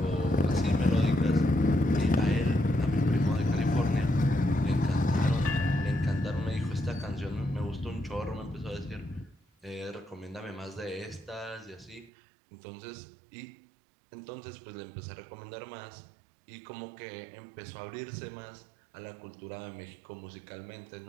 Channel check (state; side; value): drops out; left; at 12.1 s